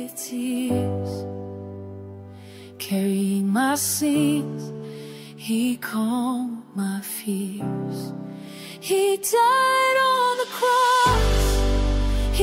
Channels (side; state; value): both; identical; correlation 1.00